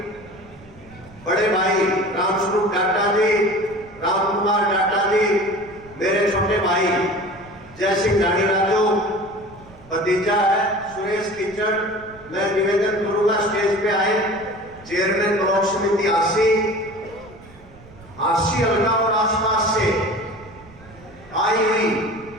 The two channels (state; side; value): noise; right; rumble, 23 dB below the sound